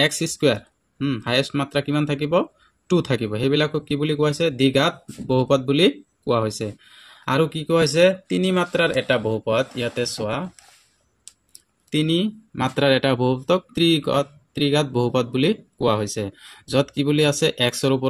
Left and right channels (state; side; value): identical; both; correlation 1.00